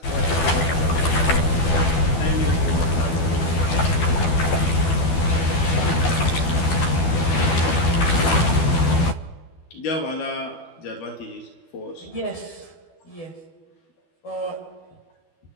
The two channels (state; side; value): late; right; 12 ms